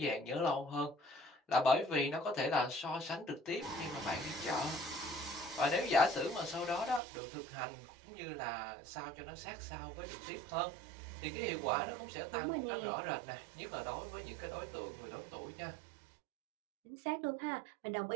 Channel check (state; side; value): drops out; left; at 7.0 s